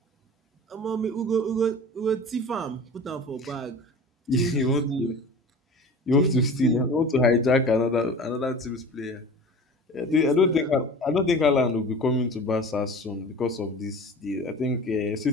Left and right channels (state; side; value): normal; both; correlation 0.38